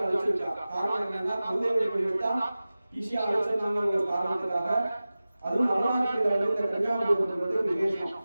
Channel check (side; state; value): both; inverted; correlation -0.97